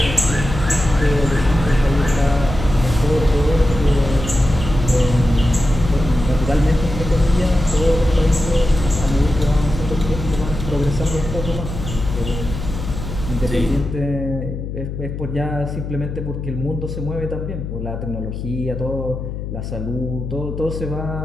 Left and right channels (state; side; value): noise; left; hum, 7 dB below the sound